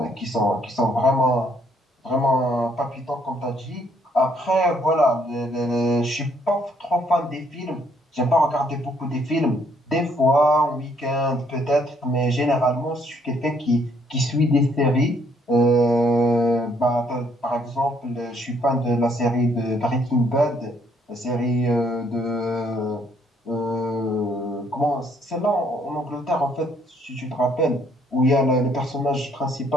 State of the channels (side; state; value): both; normal; correlation 0.68